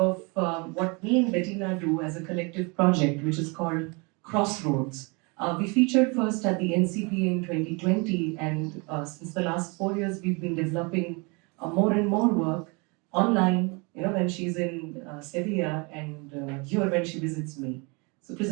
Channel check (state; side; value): quieter; left; 29.9 dB